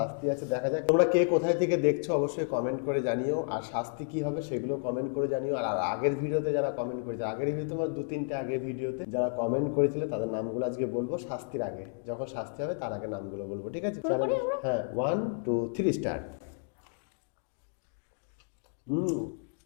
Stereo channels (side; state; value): right; silent; 57 dB below the other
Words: আছে, দেখা যাক। তোমরা কে কোথায় থেকে দেখছো অবশ্যই কমেন্ট করে জানিও, আর শাস্তি কি হবে সেগুলো কমেন্ট করে জানিও। আর আর আগের ভিডিওতে যারা কমেন্ট করেছে, আগের ভিডিও তোমার দু তিনটে আগের ভিডিওতে যারা কমেন্ট করেছিলে তাদের নামগুলো আজকে বলবো শাস্তির আগে। যখন শাস্তি হবে তার আগে নামগুলো বলবো, ঠিক আছে? শুরু করি চ্যালেঞ্জ, আমরা। হ্যাঁ, 1 2 3 স্টার্ট। হুম,